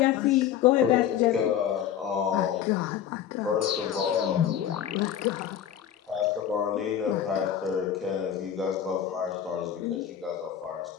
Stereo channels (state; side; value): quieter; right; 9.7 dB